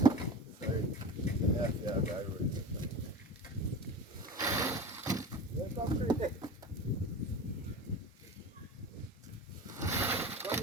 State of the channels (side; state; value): both; normal; correlation 0.31